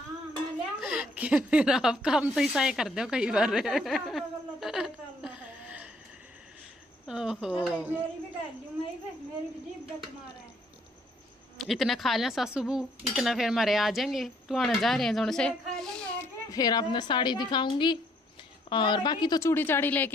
कि फिर आप काम तो ऐसा ही कर दो कई बार। ओहो इतना खा लें सासू बू, इतना फिर हमारे आ जाएंगे, तो आने जा रहे हैं जोन से, फिर आपने साड़ी दिखाऊंगी, और बाकी तो चूड़ी चाड़ी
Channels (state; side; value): normal; both; correlation 0.66